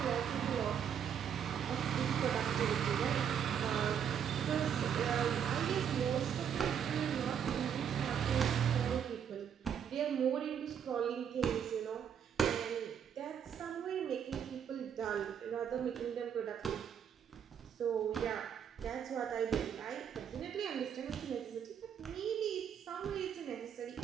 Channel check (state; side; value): quieter; left; 8.3 dB